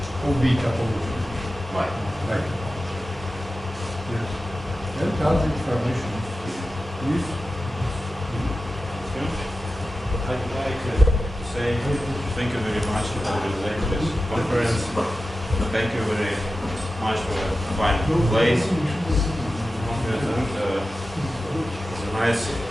bitopology. Right. Right. Yes. And other information. Please. I'd like to say thank you very much for organizing this conference. Thank you very much for a fine place. And it's a nice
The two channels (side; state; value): both; normal; correlation 0.93